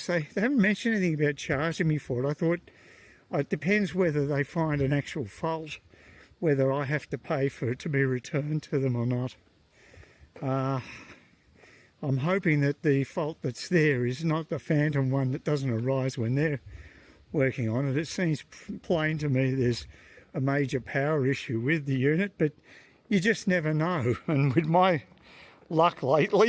They haven't mentioned anything about charging me for it. I thought it depends whether they find an actual fault, whether I have to pay for it to be returned to them or not. I'm hoping that the fault that's there is not the phantom one that doesn't arise when they're working on it. It seems plain to me there's a major power issue with the unit, but you just never know. And with my luck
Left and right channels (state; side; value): identical; both; correlation 1.00